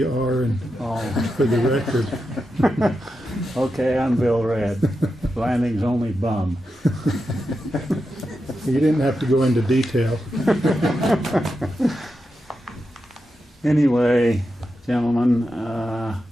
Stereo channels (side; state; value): both; normal; correlation 0.88